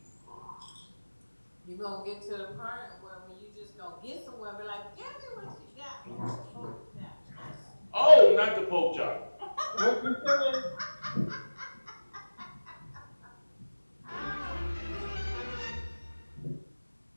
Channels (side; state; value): both; inverted; correlation -1.00